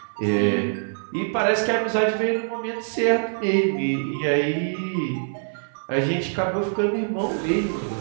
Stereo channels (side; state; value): left; silent; 56 dB below the other